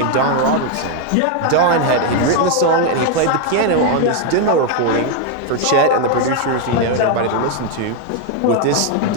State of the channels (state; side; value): different; both; correlation 0.01